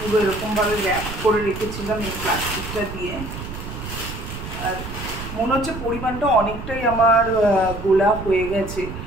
পুরো এরকমভাবে র্যাপ করে রেখেছিলাম এই প্লাস্টিকটা দিয়ে। আর মনে হচ্ছে পরিমাণটা অনেকটাই আমার গোলা হয়ে গেছে,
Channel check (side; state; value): right; noise; rumble, 9 dB below the sound